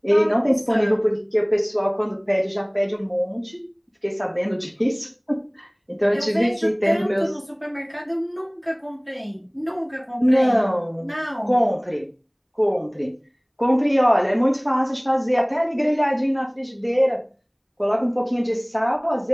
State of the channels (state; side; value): identical; both; correlation 1.00